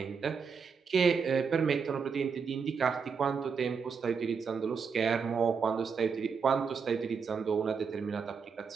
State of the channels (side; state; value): left; quieter; 5.8 dB